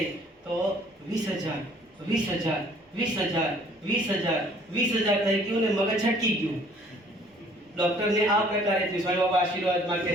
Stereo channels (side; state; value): both; normal; correlation 0.57